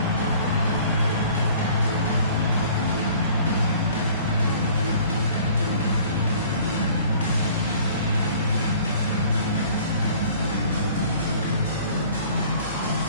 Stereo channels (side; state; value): both; inverted; correlation -0.51